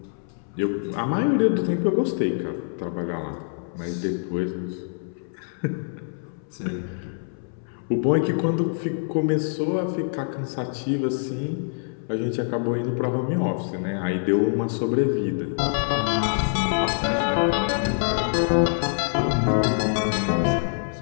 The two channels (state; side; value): silent; right; 62 dB below the other